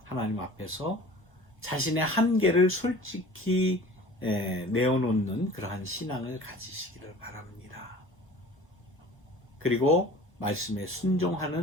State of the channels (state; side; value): normal; both; correlation 0.43